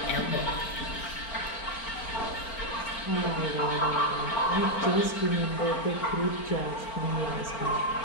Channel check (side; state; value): right; late; 4.4 ms